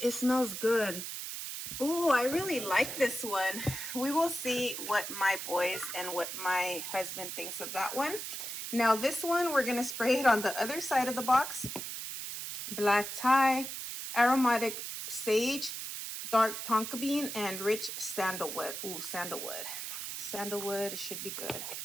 it smells good. Oh, I really like this one. We will see what my boys and what my husband thinks of that one. Now this one, we're going to spray it on the other side of the box. Black tie, aromatic sage, dark tonka bean, and rich sandalwood. Ooh, sandalwood. Sandalwood should be good.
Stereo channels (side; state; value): right; noise; hiss, 6 dB below the sound